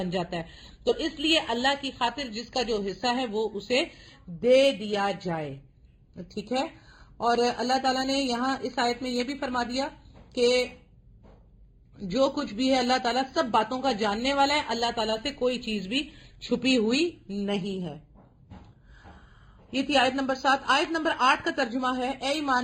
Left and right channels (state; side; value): identical; both; correlation 1.00